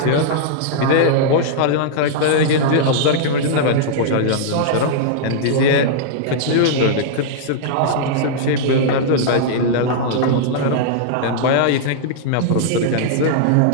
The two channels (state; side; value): different; both; correlation -0.02